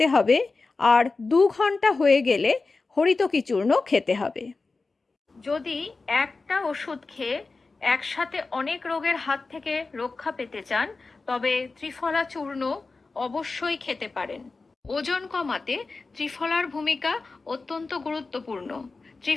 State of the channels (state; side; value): quieter; right; 3.9 dB